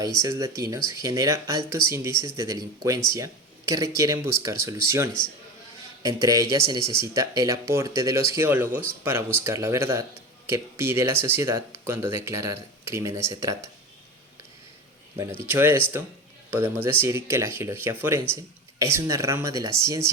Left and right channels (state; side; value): normal; both; correlation 0.26